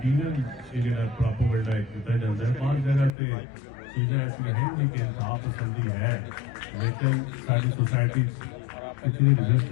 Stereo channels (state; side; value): drops out; right; at 3.1 s